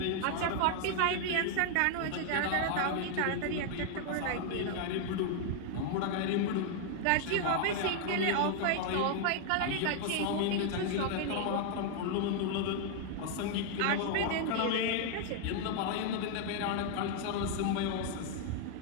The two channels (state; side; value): different; both; correlation 0.00